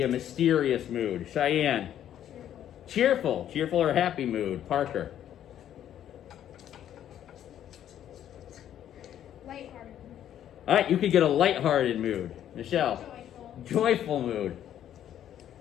a mysterious mood. Cheyenne. Cheerful. Cheerful or happy mood. Parker. Lighthearted. All right, you could get a lighthearted mood. Michelle. Joyful. Joyful mood.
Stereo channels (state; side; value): quieter; right; 10.7 dB